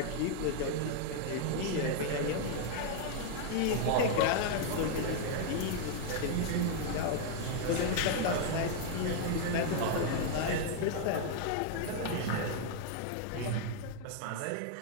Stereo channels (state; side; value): different; both; correlation 0.00